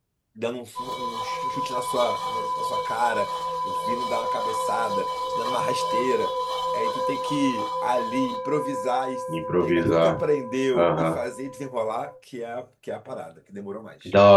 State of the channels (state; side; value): identical; both; correlation 1.00